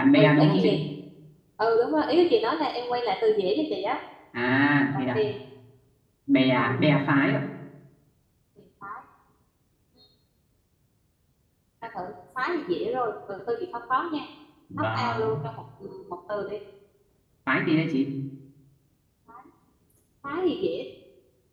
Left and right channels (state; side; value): identical; both; correlation 1.00